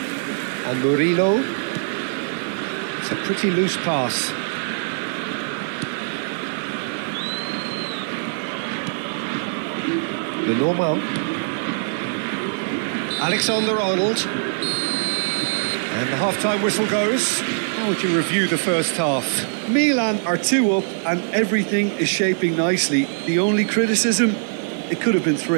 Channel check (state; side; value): silent; left; digital silence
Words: And Murillo. It's a pretty loose pass. Lenormand. Alexander-Arnold. And the half-time whistle goes. How would you review the first half? Milan are 2 up and everything is shaping nicely. The only criticism, it could have been